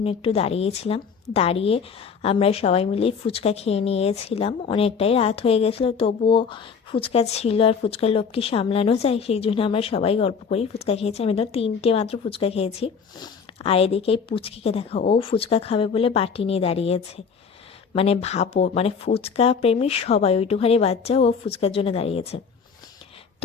একটু দাঁড়িয়েছিলাম। দাঁড়িয়ে আমরা সবাই মিলে ফুচকা খেয়ে নিয়েছিলাম। অনেকটাই রাত হয়ে গেছিলো, তবুও ফুচকা ছিল আর ফুচকার লোভ কি সামলানো যায়, সেই জন্য আমরা সবাই গল্প করি ফুচকা খেয়েছি। আমি তো 3টে মাত্র ফুচকা খেয়েছি। আর এদিকে এই পুচকিকে দেখো, ও ফুচকা খাবে বলে বাটি নিয়ে দাঁড়িয়েছে। মানে ভাবো, মানে ফুচকা প্রেমী সবাই, ওইটুখানি বাচ্চা ও ফুচকার জন্য দাঁড়িয়েছে।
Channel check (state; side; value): quieter; right; 6.0 dB